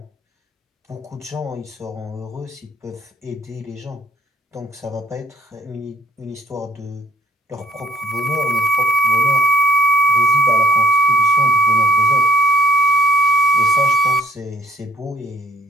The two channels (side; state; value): both; normal; correlation 0.59